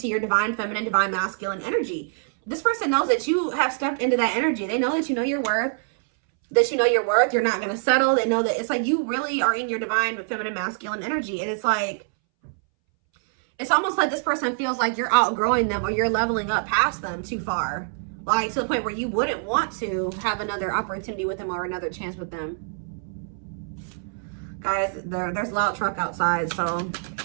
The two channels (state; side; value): silent; left; 62 dB below the other